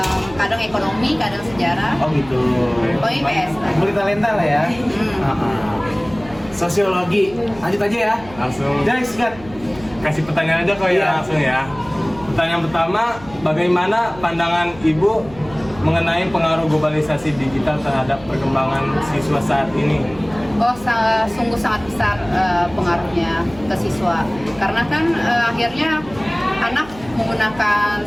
kadang ekonomi, kadang sejarah. Oh gitu. Pokoknya IPS lah. Multitalenta lah ya. Sosiologi. Lanjut aja ya. Langsung Jadi sikat. kasih pertanyaan aja kok Iya. ya langsung ya. Pertanyaan pertama, bagaimana pandangan Ibu mengenai pengaruh globalisasi digital terhadap perkembangan siswa saat ini? Oh, sungguh sangat besar pengaruhnya ke siswa. Karena kan akhirnya anak menggunakan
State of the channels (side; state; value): right; noise; hum, 19 dB below the sound